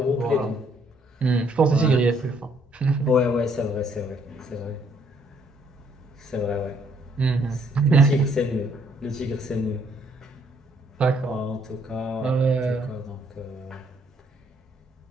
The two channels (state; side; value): normal; both; correlation 0.67